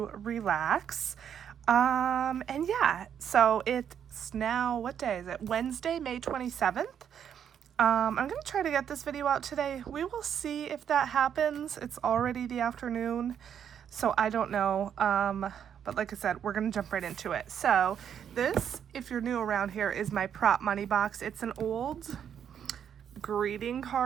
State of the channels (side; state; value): left; quieter; 8.6 dB